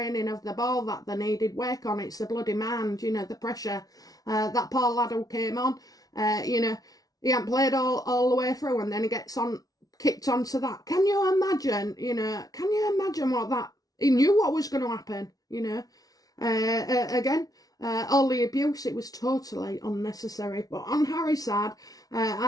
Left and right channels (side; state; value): right; late; 0.18 ms